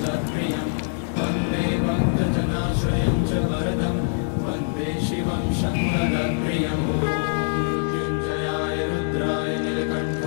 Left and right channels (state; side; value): silent; right; digital silence